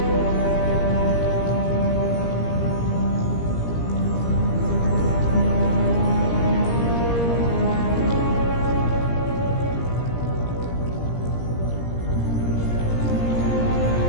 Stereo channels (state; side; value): late; right; 17 ms